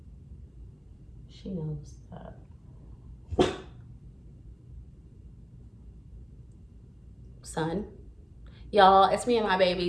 she knows that. Son, y'all, it's me and my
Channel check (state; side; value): identical; both; correlation 1.00